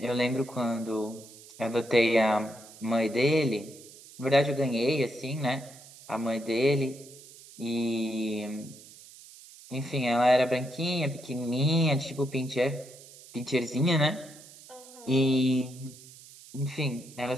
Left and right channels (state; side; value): noise; right; hiss, 20 dB below the sound